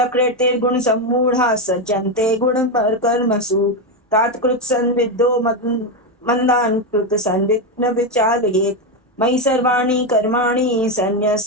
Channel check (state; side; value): normal; both; correlation 0.09